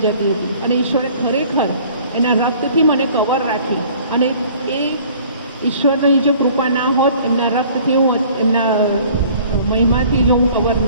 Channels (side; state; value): both; inverted; correlation -0.52